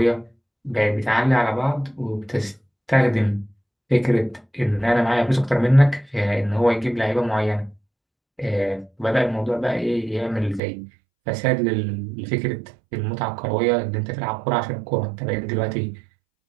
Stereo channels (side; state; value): left; drops out; at 10.6 s